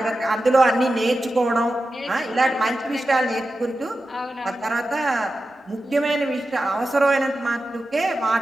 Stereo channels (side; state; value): both; normal; correlation 0.92